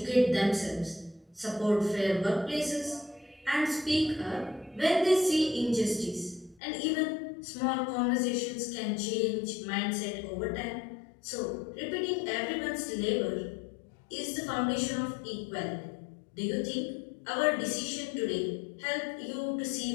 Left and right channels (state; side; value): drops out; right; at 6.6 s